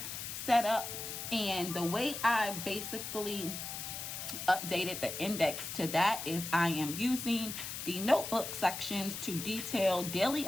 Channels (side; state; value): left; noise; hiss, 6 dB below the sound